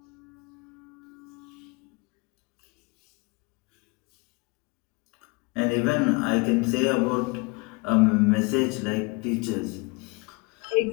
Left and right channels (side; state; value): right; quieter; 27.7 dB